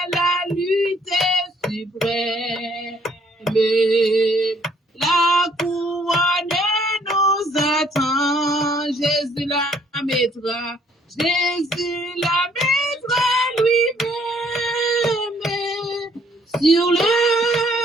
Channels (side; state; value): both; normal; correlation 0.64